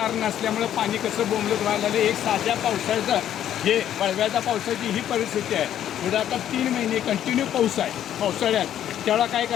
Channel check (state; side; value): quieter; right; 10.8 dB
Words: नसल्यामुळे पाणी कसं बोंबलत व्हायला लागलं. एक साध्या पावसाळ्याचं हे वळव्याच्या पावसाची ही परिस्थिती आहे. पुढे आता 3 महिने कंटिन्यू पाऊस आहे पावसाळ्यात. तेवढा काय